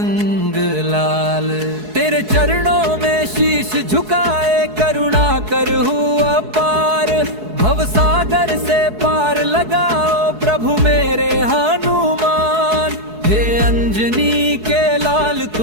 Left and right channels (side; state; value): left; late; 4.7 ms